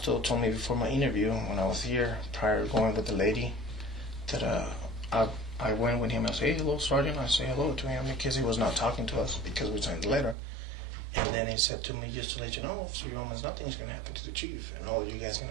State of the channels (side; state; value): left; drops out; at 10.4 s